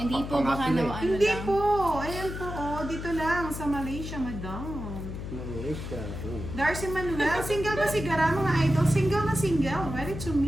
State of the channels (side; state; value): left; noise; hum, 7 dB below the sound